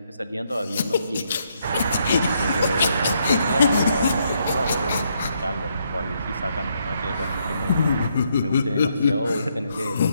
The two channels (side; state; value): both; inverted; correlation -0.75